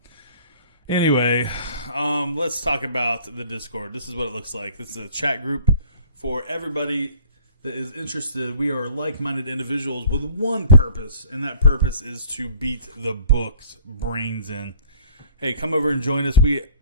Anyway, let's talk about the Discord. This is what it looks like. This is a chat group for everybody that is interested. We are like-minded individuals with one purpose, and that purpose is to beat the book's brains in. Hey, come over and join us. We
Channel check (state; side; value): inverted; both; correlation -0.49